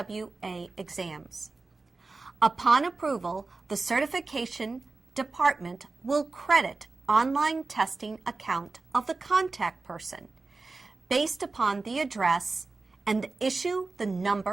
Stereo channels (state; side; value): quieter; left; 3.7 dB